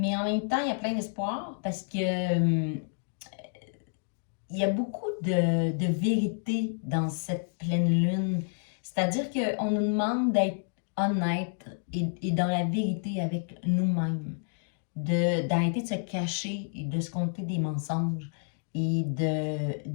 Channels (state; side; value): silent; right; digital silence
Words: en même temps, il y a plein d'espoir parce que il y a beaucoup de vérité dans cette pleine lune. C'est-à-dire qu'on nous demande d'être honnête et dans la vérité avec nous-mêmes, d'arrêter de se cacher et de se conter des mensonges et